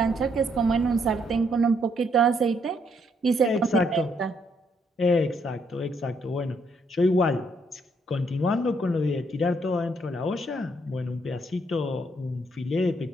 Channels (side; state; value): both; normal; correlation 0.72